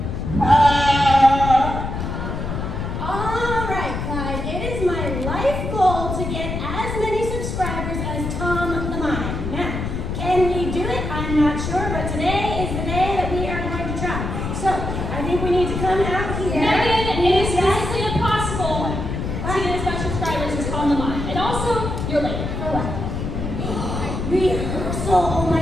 All right, Clyde. It is my life goal to get as many subscribers as Tom the Mime. Now, can we do it? I'm not sure, but today is the day that we are going to try. So, I think we need to come out here. Megan, it is physically impossible to get as much subscribers as Tom the Mime. And also, you're late. For what? Rehearsal. Oh my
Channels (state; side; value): noise; left; rumble, 4 dB below the sound